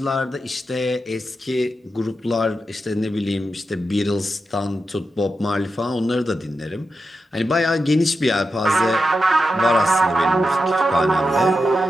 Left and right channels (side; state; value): both; normal; correlation 0.89